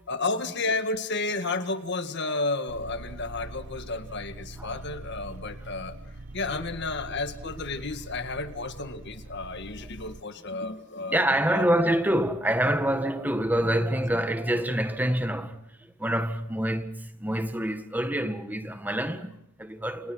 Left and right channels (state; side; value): normal; both; correlation 0.55